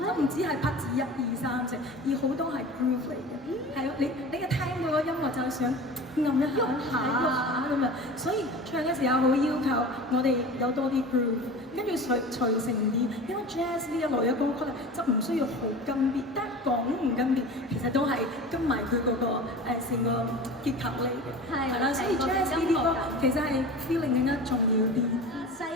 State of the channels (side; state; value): both; normal; correlation 0.35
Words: 都唔止係拍子1、2、3、4，而好多係 groove 嚟嘅。係你一聽到個音樂就係想撳一下、喐下咁樣，所以唱嘅時候好要求我哋有多啲 groove， 跟住隨成啲。因為 jazz 呢一類嘅歌曲咧，就唔需要好跟 beat， 但係講唔跟 beat， 其實都係跟埋佢嗰個成個結構嚟嘅。係啦，所以 jazz 呢啲歌其實係 feeling 更加重要啲。犀